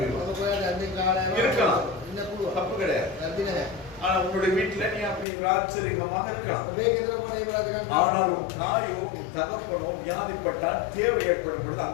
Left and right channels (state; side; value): drops out; right; at 5.2 s